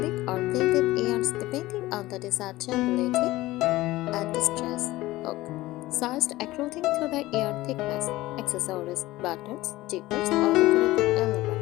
or blended yarns depending on the desired durability and distress. Hook, sized according to the yarn thickness. Accessories, buttons, zippers, or decorative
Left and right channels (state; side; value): quieter; right; 17.9 dB